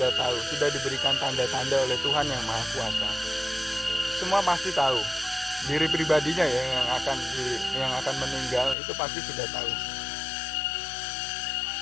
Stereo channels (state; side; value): drops out; right; at 8.8 s